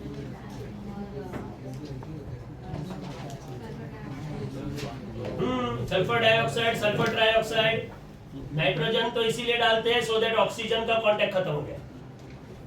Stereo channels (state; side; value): identical; both; correlation 1.00